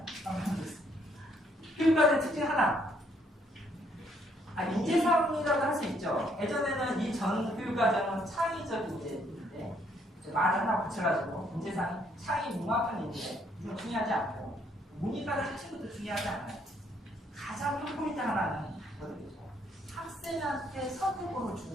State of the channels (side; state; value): both; normal; correlation 0.69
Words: 교육과정의 특징 하나. 인재사항이라고 할 수 있죠. 예전에는 이 전 교육과정은 창의적 인재인데 말을 하나 붙여가지고 인재사항 창의 융합한 인재 이건 중요하지 않고 문이과정 자체부터 중요하지 않아요. 가장 큰 포인트 하나는 뭐죠? 학생한테 선택권을